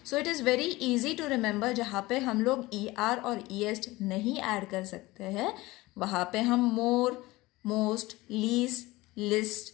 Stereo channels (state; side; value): quieter; right; 20.0 dB